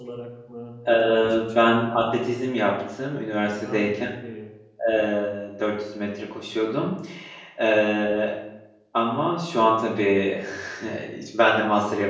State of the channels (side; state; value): both; identical; correlation 1.00